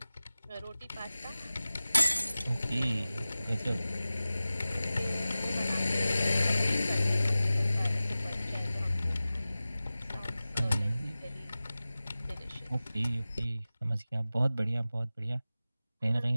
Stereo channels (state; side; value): inverted; both; correlation -0.96